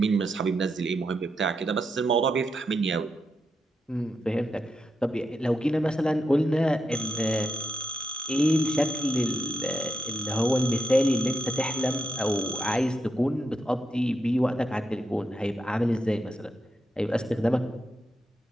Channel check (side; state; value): both; normal; correlation 0.83